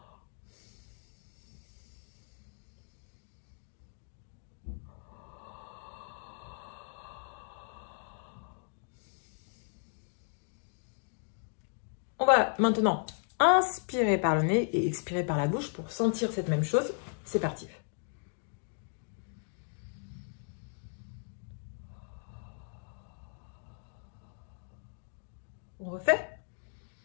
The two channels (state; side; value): silent; right; digital silence